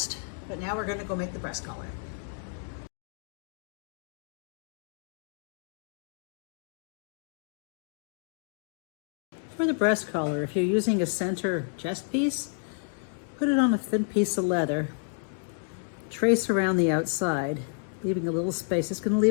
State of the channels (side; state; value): right; silent; 58 dB below the other